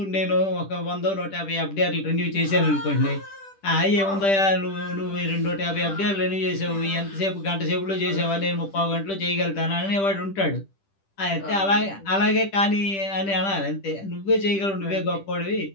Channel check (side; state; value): right; late; 10 ms